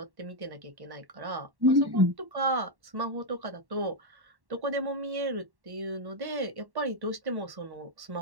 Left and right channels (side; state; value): left; late; 1.1 ms